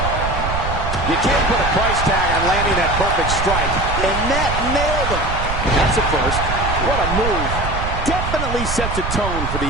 You can't put a price tag on landing that perfect strike. And that nailed him. That's a first. What a move. Definitely sets a tone for the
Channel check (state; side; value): noise; right; rumble, 4 dB below the sound